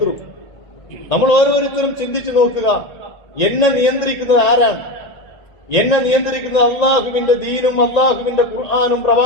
നമ്മൾ ഓരോരുത്തരും ചിന്തിച്ചു നോക്കുക, എന്നെ നിയന്ത്രിക്കുന്നത് ആരാണ്? എന്നെ നിയന്ത്രിക്കുന്നത് അള്ളാഹുവിന്റെ ദീനും അള്ളാഹുവിന്റെ ഖുർആനും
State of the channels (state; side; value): late; right; 1.9 ms